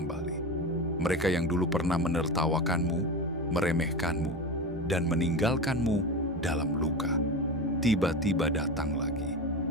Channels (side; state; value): both; normal; correlation 0.24